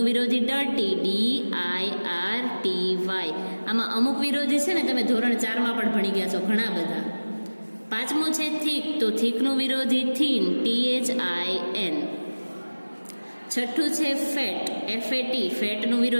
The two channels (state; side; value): inverted; both; correlation -1.00